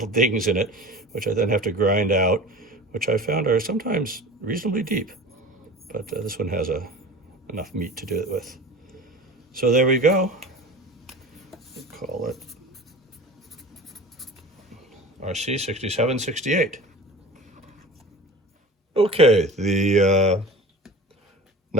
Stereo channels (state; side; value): normal; both; correlation 0.36